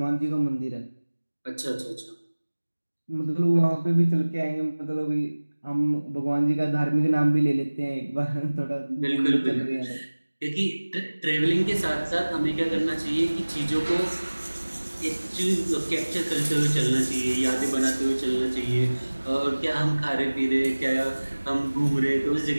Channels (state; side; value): inverted; both; correlation -1.00